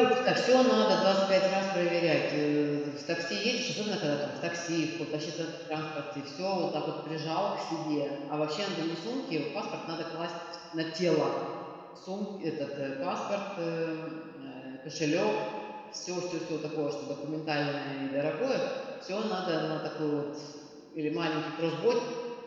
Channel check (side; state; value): both; identical; correlation 1.00